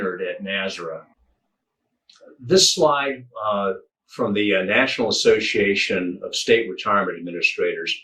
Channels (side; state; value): both; identical; correlation 1.00